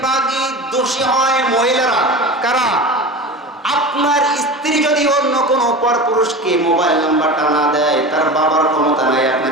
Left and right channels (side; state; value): both; normal; correlation 0.30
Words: দোষী হয় মহিলারা। কারা? আপনার স্ত্রী যদি অন্য কোনো পরপুরুষকে মোবাইল নাম্বারটা না দেয়, তার বাবার ক্ষমতা নাই